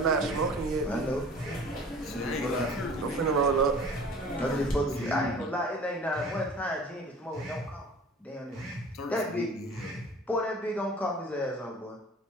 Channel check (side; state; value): both; normal; correlation 0.45